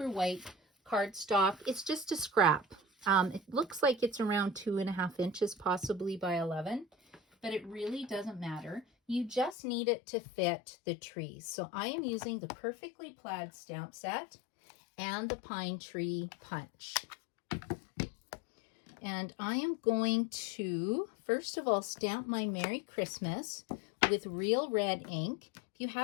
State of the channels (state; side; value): drops out; right; at 9.6 s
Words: White cardstock. It's just a scrap. It looks like it's around 2.5 inches, possibly by 11, but it really doesn't matter. You just need it to fit the trees. So I am using the Perfectly Plaid stamp set and the Pine Tree Punch. And I am going to, first of all, stamp my Merry Christmas with real red ink. If you